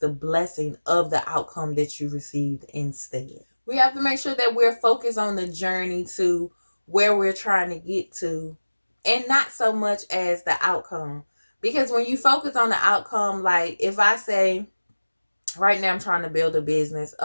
blessing of the outcome that you received instead. We have to make sure that we're focused on the journey to where we're trying to get to, and not so much as the outcome. Because when you focus on the outcome, like if I say, right now I'm trying to build a business.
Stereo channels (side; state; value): both; inverted; correlation -1.00